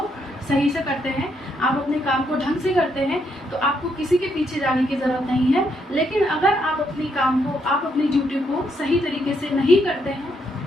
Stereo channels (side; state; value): both; normal; correlation 0.76